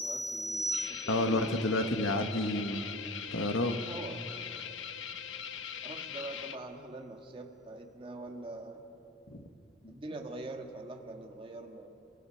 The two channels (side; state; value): both; normal; correlation 0.32